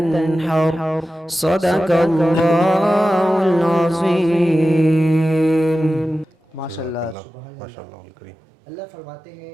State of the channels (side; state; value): left; drops out; at 7.2 s